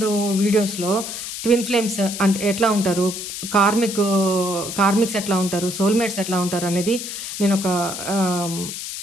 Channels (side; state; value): left; noise; hiss, 7 dB below the sound